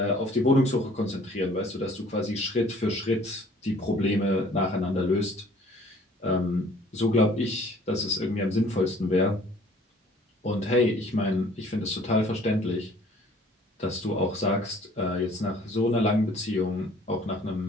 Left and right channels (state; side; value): normal; both; correlation 0.54